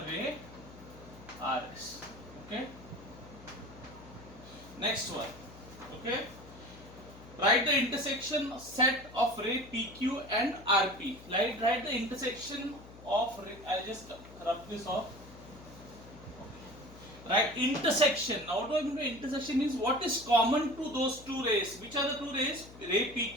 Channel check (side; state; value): left; noise; hum, 18 dB below the sound